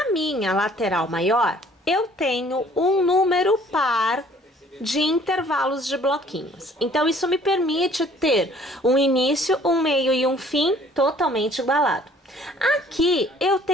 minha lateral maior, eu tenho um número par de intervalos de bloquinhos. Então, isso me permite ter um início, um meio e um fim totalmente igualado. Aqui eu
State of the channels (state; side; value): normal; both; correlation 0.56